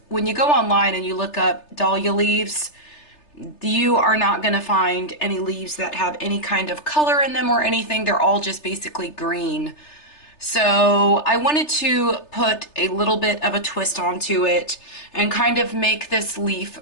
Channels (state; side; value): late; right; 3.3 ms